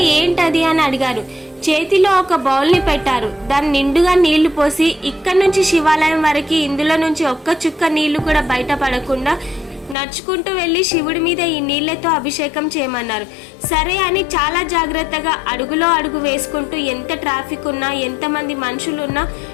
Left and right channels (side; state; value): right; drops out; at 10.0 s